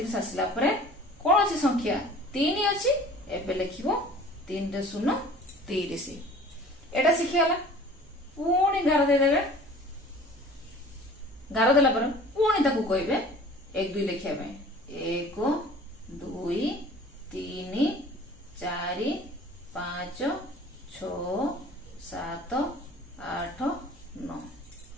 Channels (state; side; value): normal; both; correlation 0.46